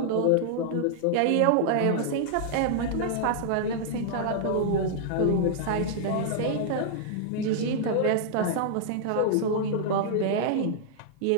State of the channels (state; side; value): different; both; correlation -0.01